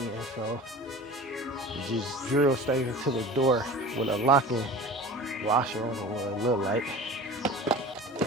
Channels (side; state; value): both; normal; correlation 0.38